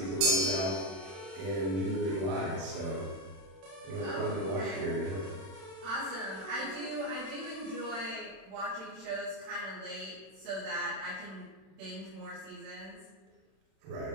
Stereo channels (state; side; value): late; left; 31 ms